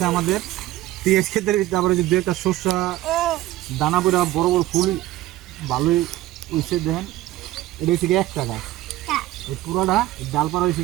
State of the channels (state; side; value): quieter; left; 15.6 dB